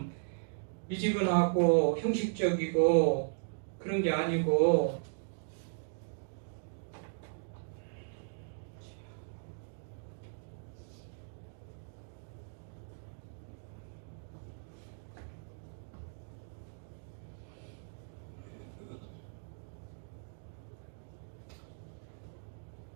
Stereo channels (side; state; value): left; silent; digital silence